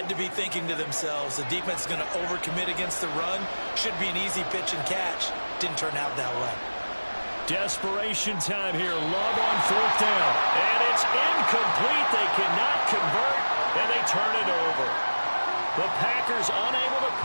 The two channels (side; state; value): both; inverted; correlation -1.00